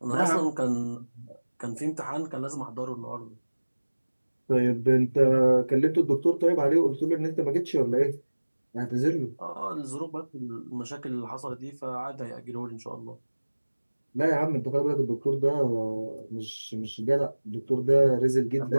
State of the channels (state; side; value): inverted; both; correlation -1.00